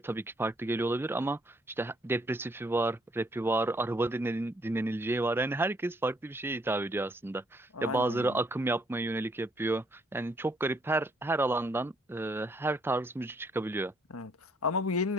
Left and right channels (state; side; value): normal; both; correlation 0.68